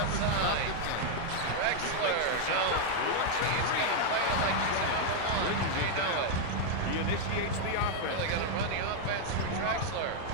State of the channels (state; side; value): different; both; correlation 0.00